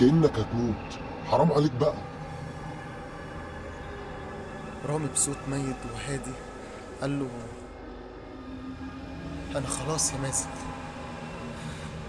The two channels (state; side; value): identical; both; correlation 1.00